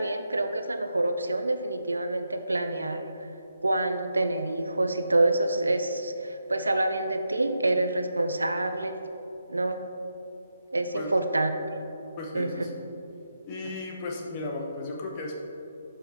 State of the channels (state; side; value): inverted; both; correlation -0.85